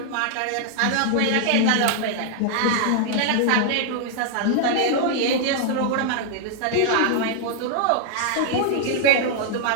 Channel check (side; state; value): both; different; correlation 0.00